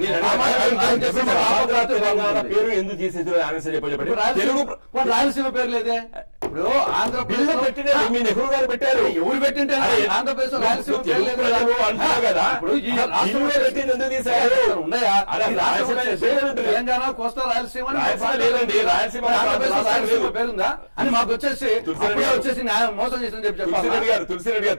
పేరు ఎందుకు తీసేది? రాయలసీమ పేరు లేదే. ఇప్పుడు బిల్లు ఆంధ్రప్రదేశ్ పెట్టిన మీ నెహ్రూ గారు పెట్టారు. ఎవరు పెట్టింటే ఆంధ్రప్రదేశ్ రాయలసీమ తెలుగు ప్రజలు అంటున్నారు కదా. ఇప్పుడు ఈ బిల్లు పెట్టింది ఎందుకు తీశారు? ఉన్నాయా? అరే, ఈ రాష్ట్రం రాయలసీమ వచ్చేసి లేదండి. తెలంగాణ, కోస్తా రాయలసీమ అని రాయలసీమ లేదండి. రాయలసీమ ఆంధ్రప్రదేశ్ రాయలసీమ లేదు. పేరుందా అని మాకు వచ్చేసి తులసిరెడ్డి అప్పుడే గారు. వచ్చేసి న్యాయం మోసం చేసిందని చెప్పి తులసిరెడ్డి గారు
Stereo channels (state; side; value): inverted; both; correlation -1.00